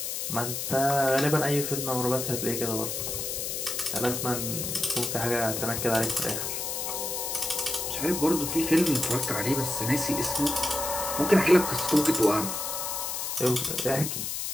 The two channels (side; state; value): left; noise; hiss, 3 dB below the sound